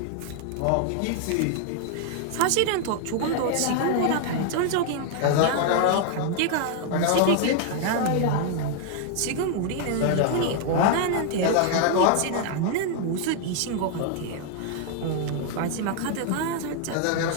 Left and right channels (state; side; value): different; both; correlation 0.00